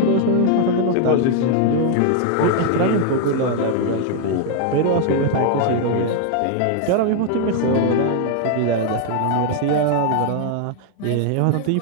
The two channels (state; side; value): different; both; correlation 0.00